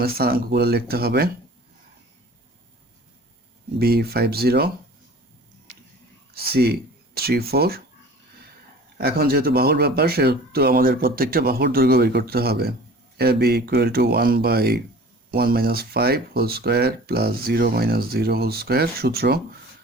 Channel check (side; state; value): both; normal; correlation 0.44